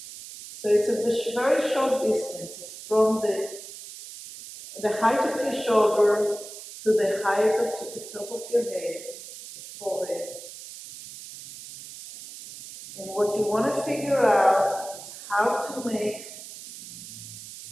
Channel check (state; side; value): noise; right; hiss, 14 dB below the sound